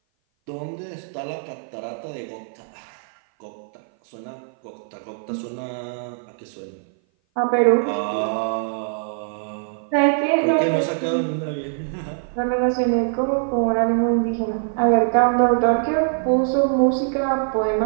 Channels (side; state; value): left; silent; 57 dB below the other